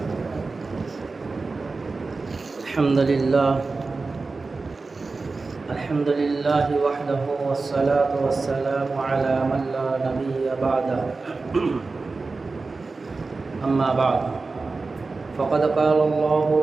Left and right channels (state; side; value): quieter; left; 3.9 dB